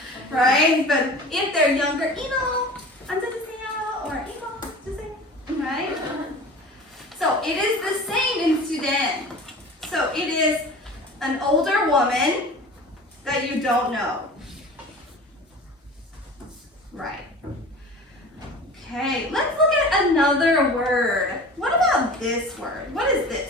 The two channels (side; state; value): both; normal; correlation 0.39